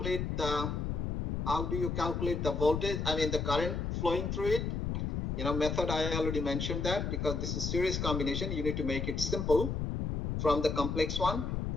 the voltage, I mean the current flowing through it? You know, method I already mentioned that, because this is series combination, you need to make it simple from the complex one,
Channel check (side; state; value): left; noise; rumble, 1 dB below the sound